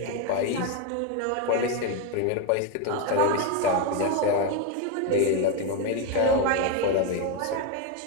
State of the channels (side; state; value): both; different; correlation 0.03